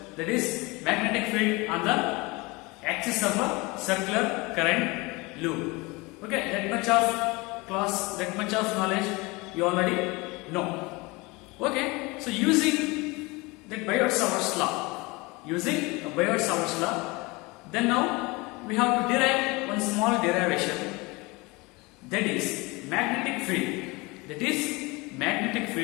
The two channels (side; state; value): right; quieter; 24.7 dB